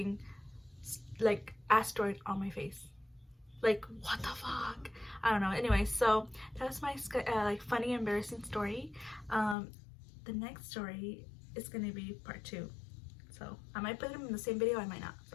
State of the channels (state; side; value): drops out; right; at 9.6 s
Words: like asteroid on my face. Like, what the fuck? I don't know. Anyway, so that was my like funny, embarrassing story. The next story is gonna be part 2. So I might put them in the same video, I might not.